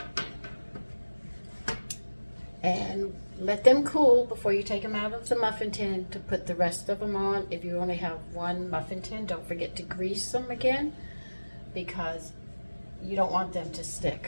And let them cool before you take them out of the muffin tin to put the rest of them on. If you only have one muffin tin, don't forget to grease them again because you don't want them to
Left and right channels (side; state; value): both; inverted; correlation -1.00